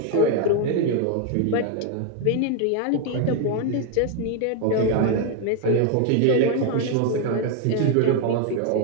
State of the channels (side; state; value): both; different; correlation 0.01